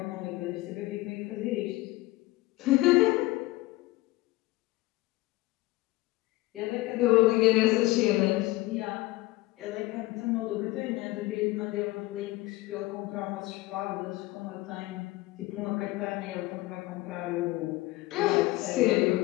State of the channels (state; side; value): quieter; right; 19.5 dB